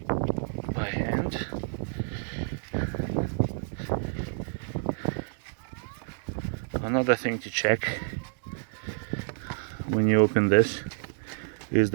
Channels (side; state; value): left; silent; digital silence